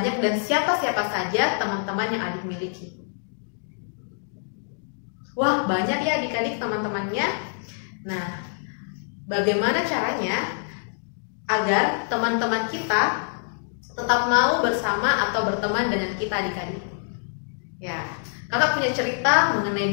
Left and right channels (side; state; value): right; silent; digital silence